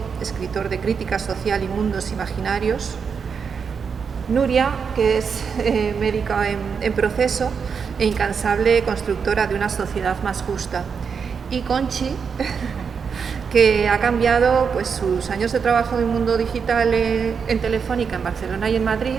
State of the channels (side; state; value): left; quieter; 6.2 dB